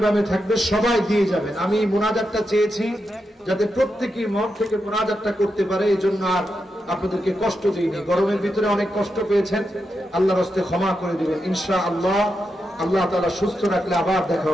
বামে থাকবে, সবাই দিয়ে যাবেন। আমি মুনাজাতটা চেয়েছি যাতে প্রত্যেকেই মন থেকে মুনাজাতটা করতে পারে, এই জন্য আর আপনাদেরকে কষ্ট দিইনি। গরমের ভিতরে অনেক কষ্ট পেয়েছেন, আল্লাহর হস্তে ক্ষমা করে দিবেন ইনশাআল্লাহ। আল্লাহ তাআলা সুস্থ রাখলে আবার দেখা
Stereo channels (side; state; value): both; normal; correlation 0.86